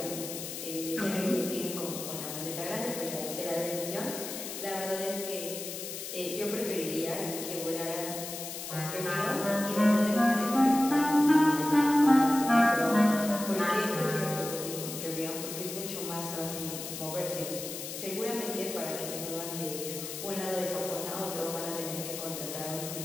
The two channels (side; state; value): left; noise; hiss, 7 dB below the sound